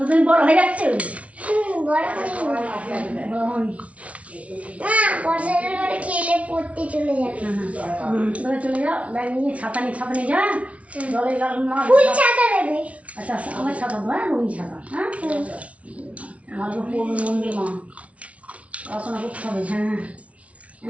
বড় হয়ে যাচ্ছে বড় হয়নি মা বর্ষার পরে খেলে পড়তে চলে যাবে ধরে চলে যাও ব্যাগ নিয়ে ছাতা নিয়ে যা জলে গেল না ফুল ছাতা দেবে আচ্ছা আমার ছাতা হ্যাঁ রঙিন ছাতা হ্যাঁ আমার তো মন্দির মা পড়াশোনা করতে হবে হ্যাঁ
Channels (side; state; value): left; late; 0.064 ms